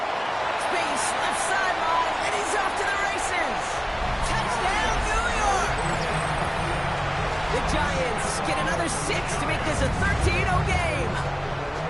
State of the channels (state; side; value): identical; both; correlation 1.00